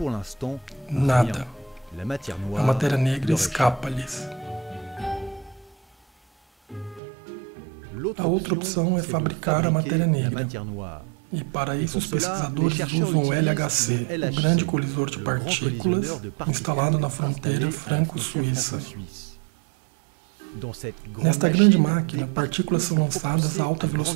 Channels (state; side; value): drops out; left; at 7.0 s